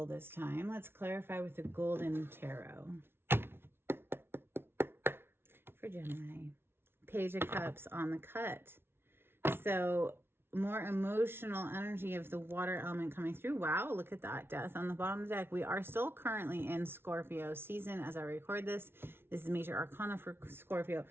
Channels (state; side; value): late; left; 0.11 ms